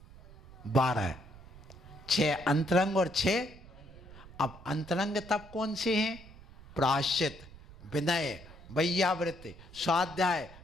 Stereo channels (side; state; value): right; noise; rumble, 19 dB below the sound